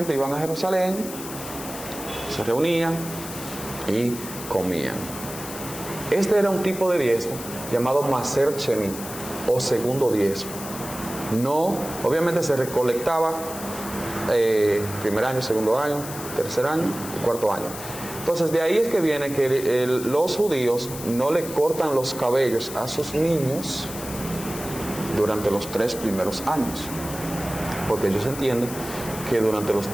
iban a Jerusalén, se reunían y comían. Este era un tipo de diezmo llamado Maser Chenit, o segundo diezmo. No, obviamente se recolectaba primer año, segundo año, tercer año y cuarto año. Entonces de ahí es que viene que los judíos no le cortan los cabellos a sus niños durante los 3 primeros años, porque ellos entienden que durante los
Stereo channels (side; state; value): left; noise; hiss, 11 dB below the sound